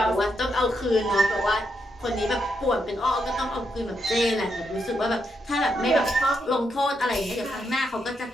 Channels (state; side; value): normal; both; correlation 0.81